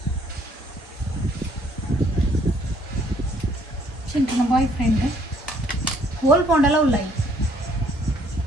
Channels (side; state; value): both; normal; correlation 0.64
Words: ಚಿಂಟನ ಬಾಯ್ ಫ್ರೆಂಡ್ ಹೋಲ್ ಪೌಂಡೆಲ್ಲ ಉಳ್ಳಾಯಿ